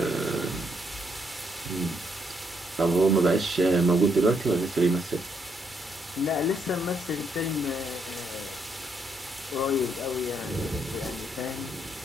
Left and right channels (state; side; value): normal; both; correlation 0.75